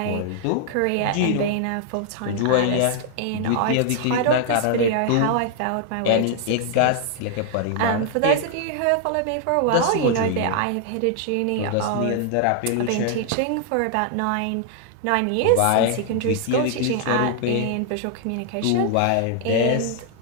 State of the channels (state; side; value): different; both; correlation 0.00